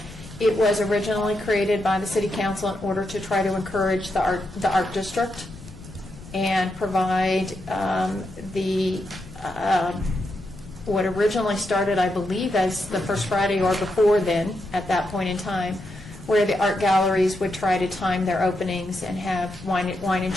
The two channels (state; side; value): noise; left; rumble, 19 dB below the sound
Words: It was originally created by the City Council in order to try to encourage the art district and provide what originally started, I believe, as the first Friday or before then, at that point in time, where the art galleries would try to time their openings and have wine and